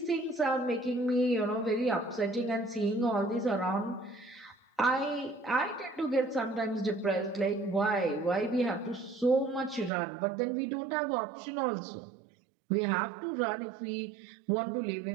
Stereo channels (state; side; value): drops out; left; at 9.9 s